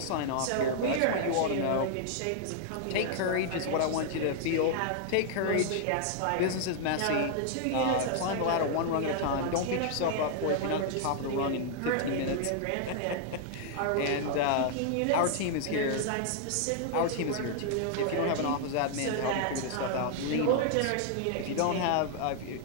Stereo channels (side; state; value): both; different; correlation 0.00